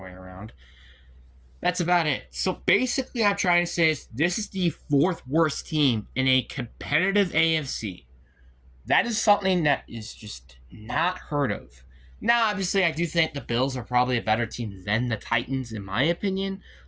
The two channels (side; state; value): both; identical; correlation 1.00